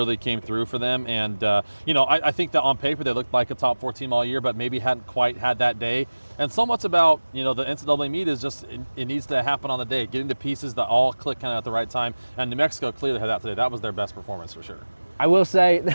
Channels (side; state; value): both; inverted; correlation -1.00